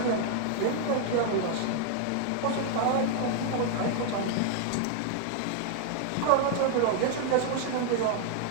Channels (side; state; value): both; different; correlation 0.00